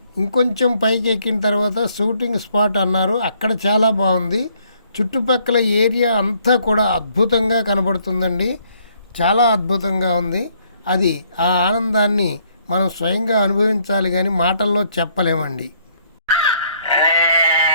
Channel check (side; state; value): both; inverted; correlation -0.67